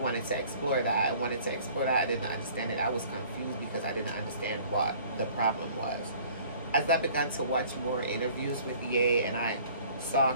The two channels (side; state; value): both; inverted; correlation -0.52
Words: to explore that. I wanted to explore that. I didn't understand it. I was confused because I didn't understand what the problem was. As I began to watch more interviews with Ye, and I saw a